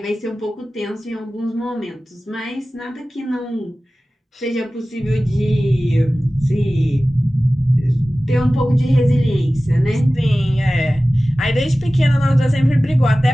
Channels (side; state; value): both; normal; correlation 0.96